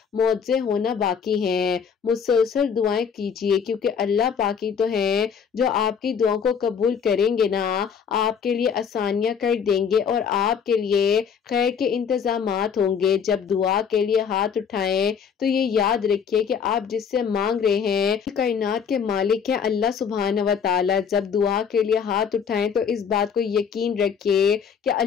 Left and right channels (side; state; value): right; quieter; 6.9 dB